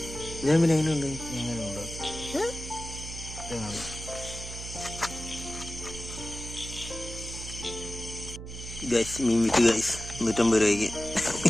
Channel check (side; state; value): right; noise; hum, 10 dB below the sound